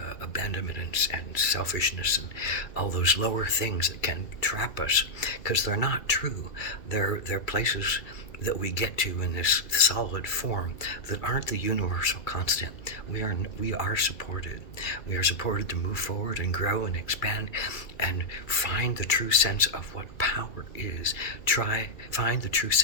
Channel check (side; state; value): right; late; 2.3 ms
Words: abandonment and selfishness and all those lower things that can trap us, because they're not true. They're places that we get to in this solid form that aren't the universal constant. We are supported. We are supported to move forward and grow and expand and find the true sense of what power is. Find the true